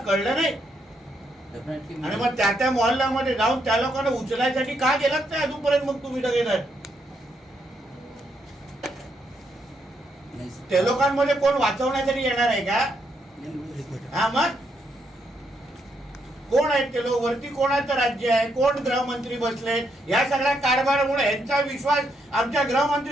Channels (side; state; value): both; normal; correlation 0.77